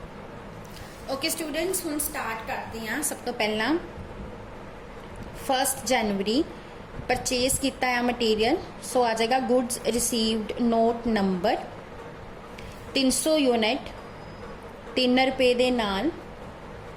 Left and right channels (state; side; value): identical; both; correlation 1.00